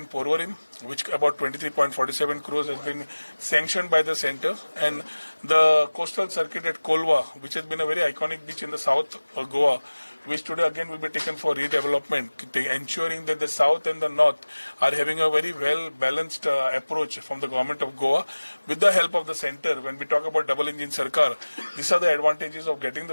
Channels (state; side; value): inverted; both; correlation -1.00